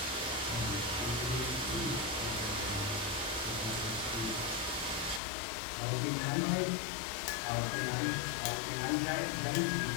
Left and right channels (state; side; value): drops out; right; at 5.2 s